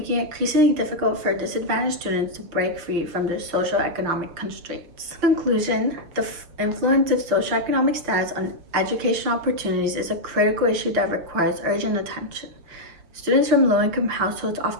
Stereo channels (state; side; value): late; left; 6.6 ms